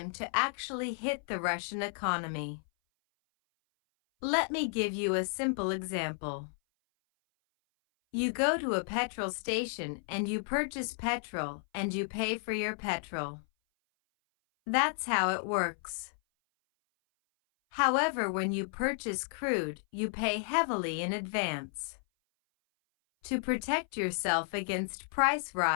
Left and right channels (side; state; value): right; silent; 56 dB below the other